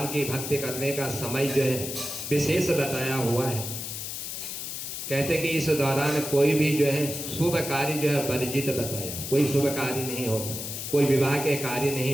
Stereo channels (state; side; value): noise; left; hiss, 6 dB below the sound